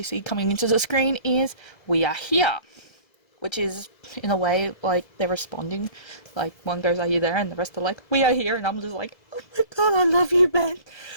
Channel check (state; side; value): late; right; 1.7 ms